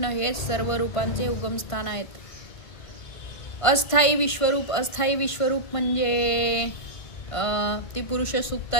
हे सर्व रूपांचे उगमस्थान आहेत. अस्थायी विश्वरूप म्हणजे ती पुरुष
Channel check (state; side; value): late; right; 1.5 ms